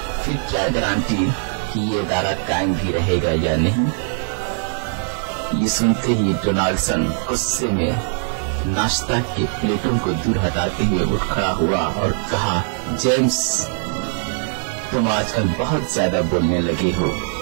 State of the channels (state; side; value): silent; left; 65 dB below the other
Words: फिर क्या गारंटी कि ये इदारा कायम भी रहेगा या नहीं। ये सुनते ही डोनाल्डसन गुस्से में नाश्ता के प्लेटों को दूर हटाते हुए उठ खड़ा हुआ और कहा, जेम्स, तुम आजकल बहुत ज्यादा बोलने लगे हो।